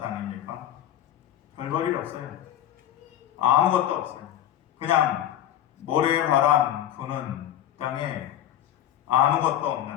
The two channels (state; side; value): quieter; right; 11.6 dB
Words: 땅입니까? 별볼일 없어요. 아무것도 없어요. 그냥 모래바람 부는 땅에 아무것도